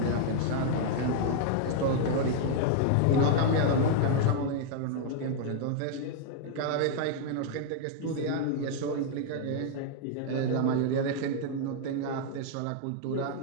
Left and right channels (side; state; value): both; different; correlation -0.01